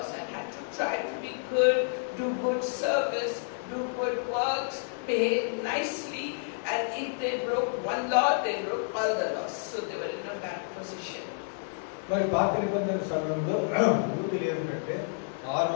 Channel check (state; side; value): silent; right; digital silence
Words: and had to try to be good, do good service, do good works, behave nicely, and if they broke one law, they broke all the laws. So they were in a bad position. మరి పాత నిబంధన సమయంలో యూదులు ఏమిటంటే